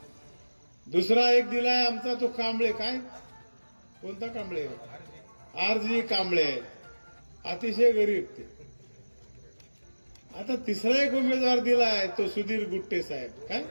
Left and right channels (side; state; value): both; inverted; correlation -1.00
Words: दुसरा एक दिलाय आमचा तो कांबळे, काय कोणता कांबळे? आरजी कांबळे, अतिशय गरीब ते। आता तिसरा एक उमेदवार दिलाय तो सुधीर गुट्टे साहेब, काय